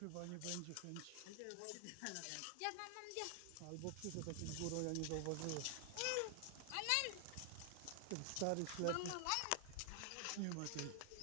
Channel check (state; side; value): different; both; correlation 0.00